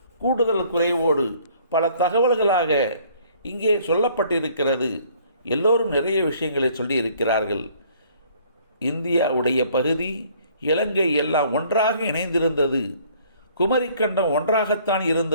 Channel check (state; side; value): inverted; both; correlation -0.58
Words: கூடுதல் குறைவோடு பல தகவல்களாக இங்கே சொல்லப்பட்டிருக்கிறது. எல்லோரும் நிறைய விஷயங்களை சொல்லியிருக்கிறார்கள். இந்தியாவுடைய பகுதி, இலங்கை எல்லாம் ஒன்றாக இணைந்திருந்தது. குமரிக்கண்டம் ஒன்றாகத்தான்